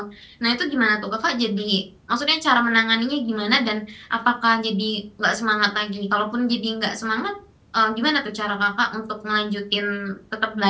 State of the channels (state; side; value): identical; both; correlation 1.00